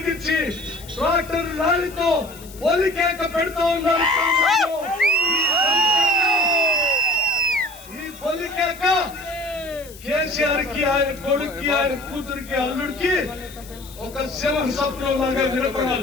ట్రాక్టర్ ర్యాలీతో పొలికేక పెడతా ఉన్నారు. ఈ పొలికేక కేసీఆర్ కి, ఆయన కొడుక్కి, ఆయన కూతురికి, అల్లుడికి ఒక శివ స్వప్నం లాగా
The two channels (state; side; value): noise; left; hiss, 19 dB below the sound